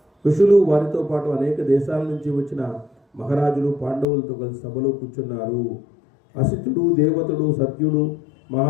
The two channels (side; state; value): right; drops out; at 4.0 s